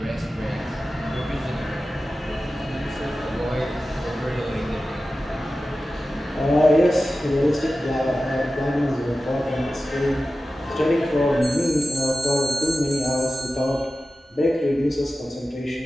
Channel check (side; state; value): both; normal; correlation 0.94